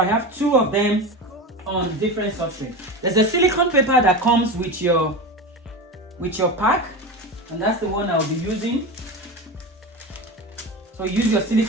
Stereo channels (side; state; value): both; normal; correlation 0.25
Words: have two of them on different substrates. There's a silicone paper that comes with your pack, and that's the one I'll be using. So use your